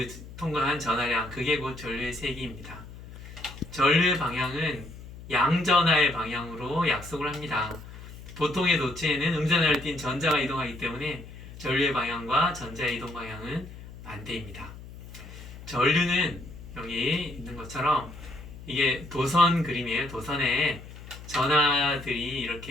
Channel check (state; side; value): noise; left; hum, 15 dB below the sound